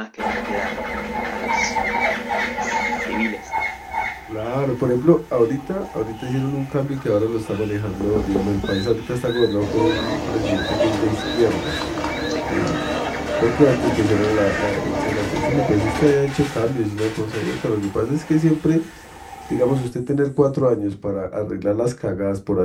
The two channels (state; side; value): identical; both; correlation 1.00